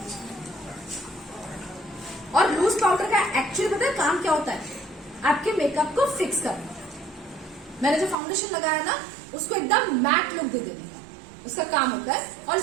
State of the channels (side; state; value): left; drops out; at 8.2 s